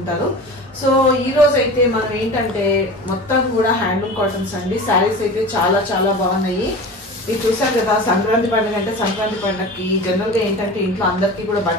సో ఈ రోజు అయితే మనం ఏంటంటే మొత్తం కూడా హ్యాండ్లూమ్ కాటన్స్ అండి. శారీస్ అయితే చాలా చాలా బాగున్నాయి. ఇది చూసారు కదా, సంక్రాంతి పండుగ అంటే సంక్రాంతి పండుగకి జనరల్ గా ఏంటంటే ఇంట్లో అందరికీ కూడా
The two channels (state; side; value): normal; both; correlation 0.34